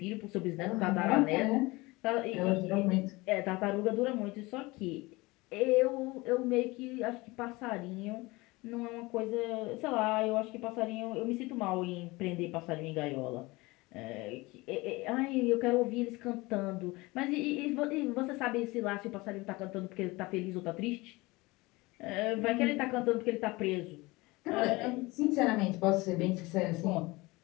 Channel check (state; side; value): quieter; right; 22.5 dB